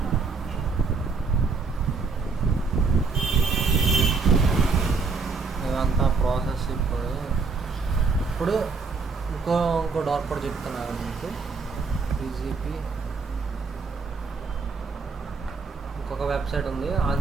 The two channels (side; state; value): left; quieter; 4.5 dB